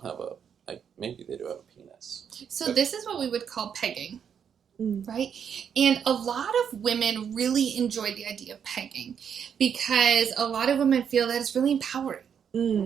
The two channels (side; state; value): left; quieter; 7.8 dB